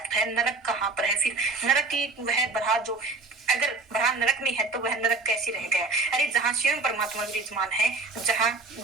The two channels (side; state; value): left; quieter; 3.6 dB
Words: है, नरक कहाँ पर है फिर? नरक की वह बरहा जो अगर बरहा नरक में है तो वह नरक कैसे रह गया? अरे जहाँ स्वयं परमात्मा विराजमान है, जहाँ